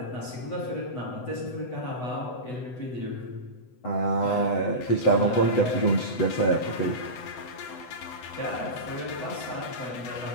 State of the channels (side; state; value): right; late; 8.0 ms